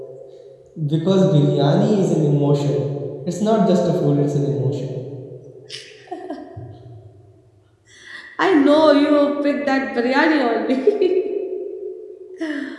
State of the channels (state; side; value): identical; both; correlation 1.00